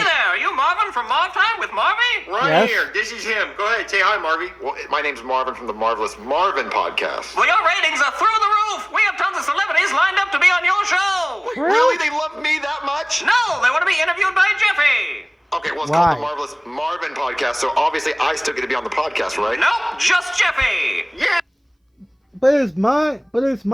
there, are you Marvin from Marv Time with Marvy? Right Yes. here. This is him. Go ahead, say hi, Marvy. Well, my name's Marvin from the Marvelous Marvin podcast. Well, your ratings are through the roof. We have tons of celebrities lined up to be on your show. Really? They love me that much? No, they want to be interviewed by Jeffy. Okay, well, it's Why? called the Marvelous Marvin podcast, so obviously I still get to be on the podcast, right? Nope, just Jeffy. Yeah. But it's my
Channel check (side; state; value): both; identical; correlation 1.00